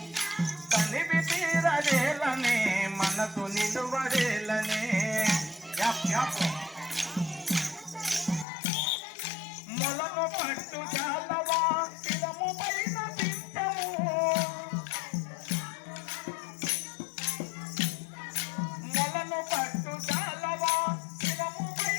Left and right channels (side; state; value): right; drops out; at 8.5 s